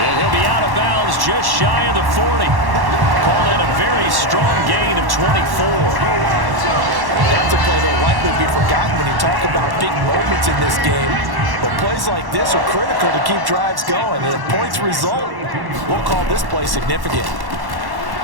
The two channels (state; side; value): late; left; 1.1 ms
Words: he'll be out of bounds just shy of the 40. Called in a very strong gain of 24. That's a play that will likely be forgotten when you talk about big moments in this game. But plays like this are critical to keep drives going. And if points result, we'll call this play significant.